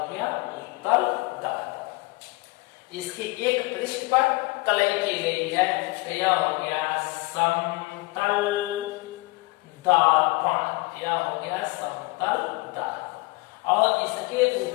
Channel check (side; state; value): right; quieter; 24.2 dB